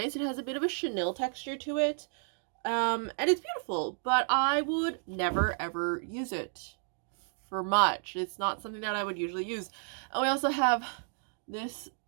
It has a bit of a chenille texture to it. And it's beautiful, but I would never ever use it for much. It's not something that I would usually use. And we also have this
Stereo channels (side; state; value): left; silent; 56 dB below the other